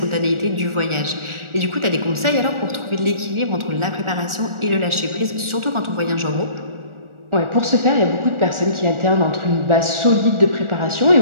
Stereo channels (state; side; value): late; left; 1.4 ms